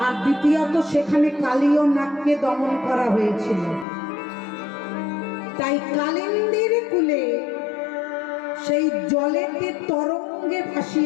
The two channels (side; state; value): right; drops out; at 3.9 s